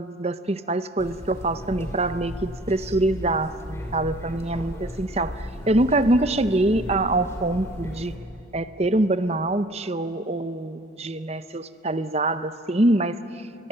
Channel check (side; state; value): both; normal; correlation 0.52